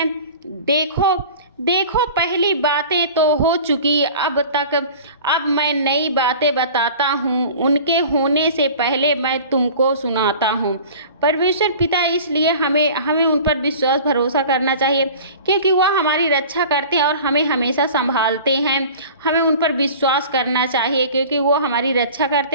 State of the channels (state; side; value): inverted; both; correlation -0.41